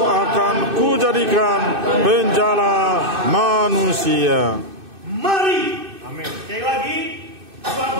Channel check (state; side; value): late; left; 2.6 ms